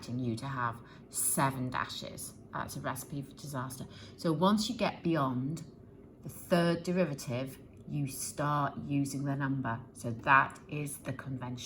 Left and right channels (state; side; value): identical; both; correlation 1.00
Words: you to have 7 dashes. That's a recipe for disaster. So once you get beyond the third derivative, you start using the number. So that is the